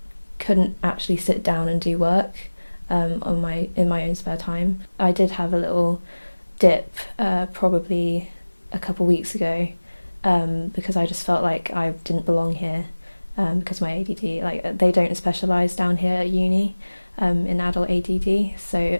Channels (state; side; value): inverted; both; correlation -1.00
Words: couldn't actually sit down and do work in my own spare time. I did have a little dip probably a couple weeks ago because I just felt like I didn't belong here because my ADD, like they don't specialise down here at uni in adult ADD, so